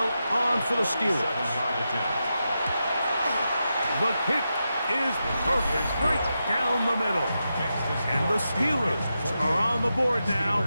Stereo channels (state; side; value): inverted; both; correlation -0.88